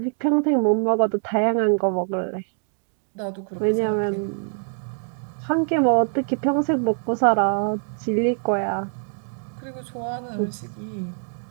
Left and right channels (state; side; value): silent; left; 56 dB below the other